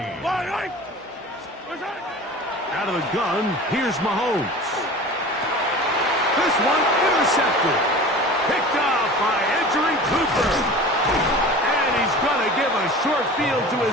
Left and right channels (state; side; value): normal; both; correlation 0.38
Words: Out of the gun, here's Mahomes. This one intercepted. Picked off by Edgerrin Cooper. And he's going to give a short field to